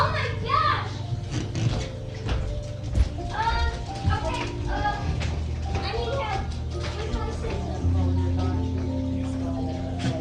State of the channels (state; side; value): identical; both; correlation 1.00